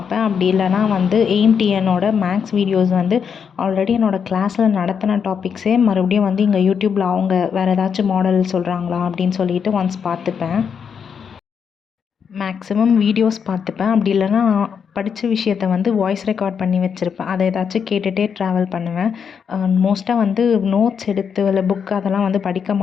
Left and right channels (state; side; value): quieter; right; 6.9 dB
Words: அப்படி இல்லைனா வந்து AIMTNோட மேக்ஸ் வீடியோஸ் வந்து ஆல்ரெடி என்னோடய கிளாஸில் நடத்தின டாபிக்ஸே மறுபடியும் வந்து இங்கே யூடியூப்பில் அவங்க வேறு ஏதாச்சும் மாடல் சொல்கிறாங்களா அப்படின்னு சொல்லிட்டு ஒன்ஸ் பார்த்துப்பேன். மேக்ஸிமம் வீடியோஸ் பார்த்துப்பேன். அப்படி இல்லைனா படித்த விஷயத்த வந்து வாய்ஸ் ரெக்கார்ட் பண்ணி வச்சுருப்பேன். அதை ஏதாச்சும் கேட்டுகிட்டே ட்ராவல் பண்ணுவேன். மோஸ்ட்டாக வந்து நோட்ஸ் எடுத்து இல்லை புக் அதெல்லாம் வந்து படிக்க